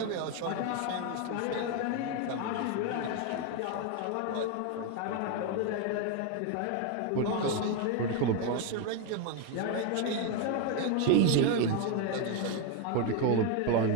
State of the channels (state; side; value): different; both; correlation 0.02